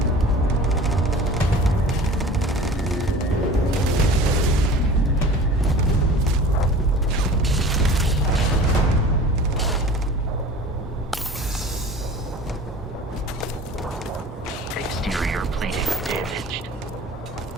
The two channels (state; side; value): normal; both; correlation 0.41